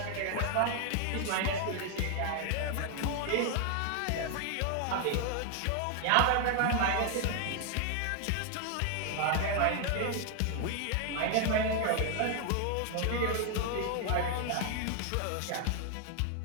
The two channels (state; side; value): different; both; correlation 0.00